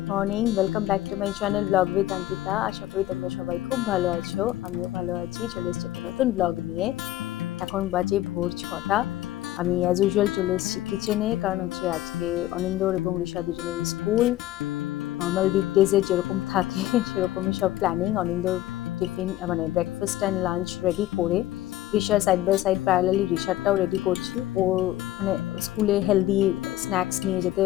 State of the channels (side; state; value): right; quieter; 14.7 dB